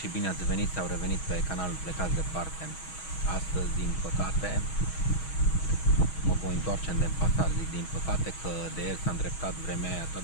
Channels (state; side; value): late; right; 6.3 ms